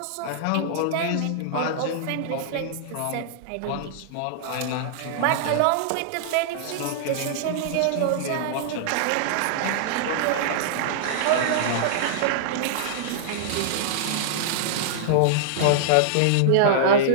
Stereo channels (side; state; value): both; different; correlation -0.02